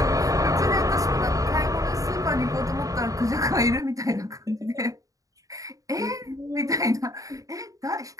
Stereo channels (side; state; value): left; late; 0.16 ms